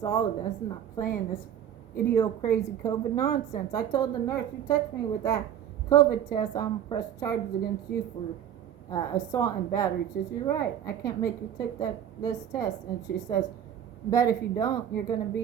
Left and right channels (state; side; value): quieter; left; 9.8 dB